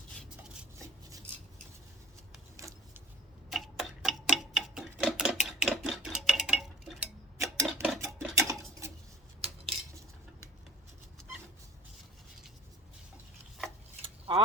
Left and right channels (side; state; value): both; normal; correlation 0.48